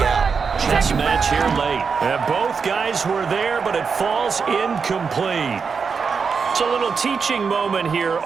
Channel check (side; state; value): left; quieter; 5.6 dB